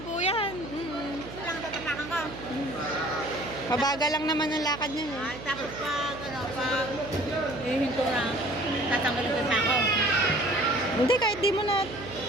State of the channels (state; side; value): noise; right; hum, 13 dB below the sound